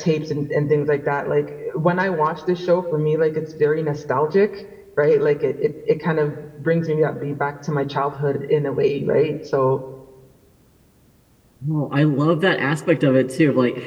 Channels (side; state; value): both; identical; correlation 1.00